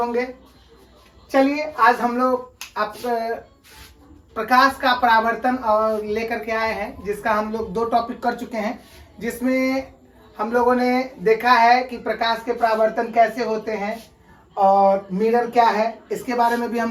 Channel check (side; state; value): both; identical; correlation 1.00